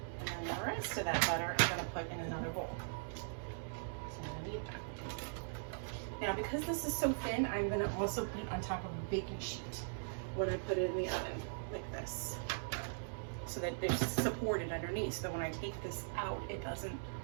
And then the rest of that butter I'm going to put in another bowl. So I'm going to need that. Now, because this is so thin, I'm going to also put it on top of a baking sheet when I put it in the oven, like this, so that it's supported underneath, so that when I take this out, it doesn't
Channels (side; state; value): left; silent; digital silence